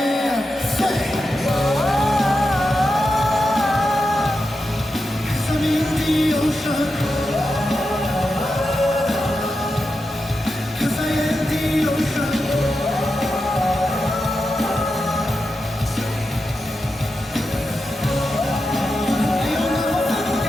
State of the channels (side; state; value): both; normal; correlation 0.89